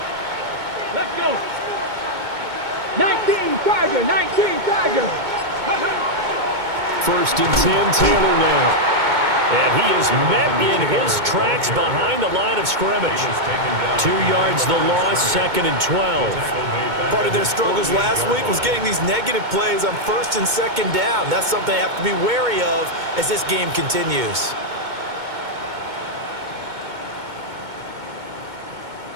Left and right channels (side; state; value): left; late; 2.2 ms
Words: Let's go. 19 Tiger, 19 Tiger. First and 10, Taylor now. And he is met in his tracks behind the line of scrimmage. 2 yards the loss, second and 12. Part of their struggles last week was getting these negative plays on first and second down. That's something they have to be wary of as this game continues.